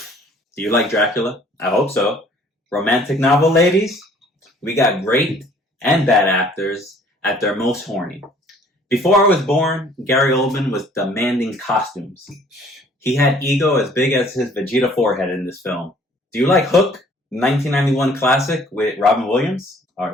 Do you like Dracula? I hope so. Romantic novel, ladies? We got great and bad actors at their most horny. Before I was born, Gary Oldman was demanding costumes. He had ego as big as his Vegeta forehead in this film. Do you like Hook? 1991 classic with Robin Williams?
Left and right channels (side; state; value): both; normal; correlation 0.56